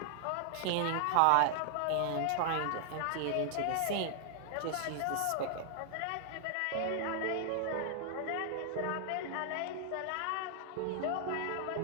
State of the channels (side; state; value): both; different; correlation 0.00